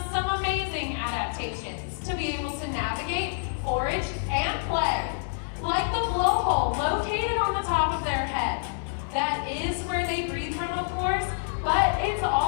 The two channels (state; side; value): silent; right; digital silence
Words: some amazing adaptations to be able to navigate, forage, and play. Like the blowhole located on the top of their head. That is where they breathe from, of course, but it's